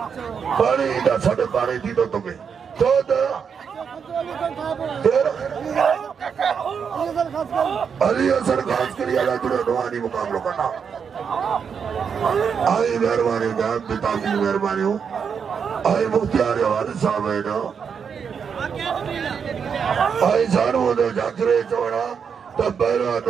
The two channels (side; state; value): left; quieter; 6.7 dB